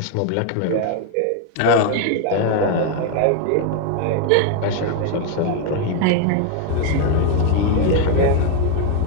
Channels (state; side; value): different; both; correlation 0.01